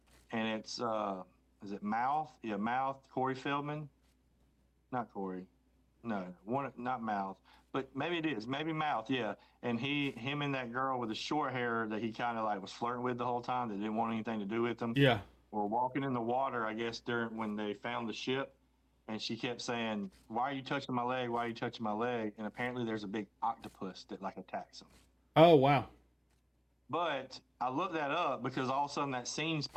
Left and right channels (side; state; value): both; identical; correlation 1.00